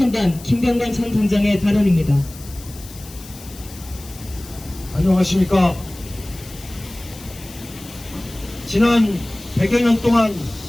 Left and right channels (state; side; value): noise; left; hiss, 18 dB below the sound